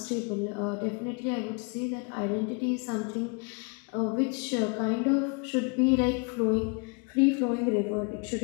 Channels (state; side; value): quieter; right; 34.5 dB